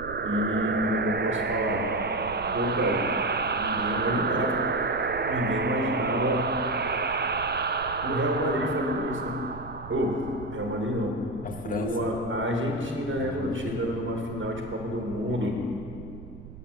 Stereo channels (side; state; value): right; noise; rumble, 15 dB below the sound